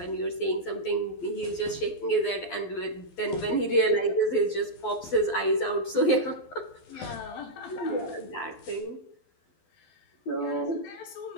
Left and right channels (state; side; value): late; right; 12 ms